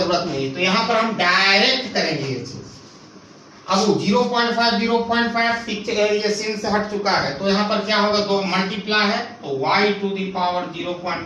नहीं. तो यहाँ पर हम डायरेक्ट करेंगे ये चीज. अब 0.5 ये सीन से हट चुका है, तो यहाँ पर क्या होगा, दो मल्टीप्लाई है तो y टू द पावर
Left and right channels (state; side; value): identical; both; correlation 1.00